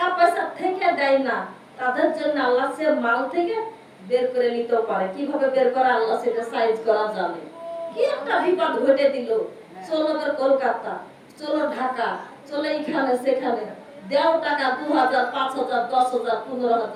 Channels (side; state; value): both; identical; correlation 1.00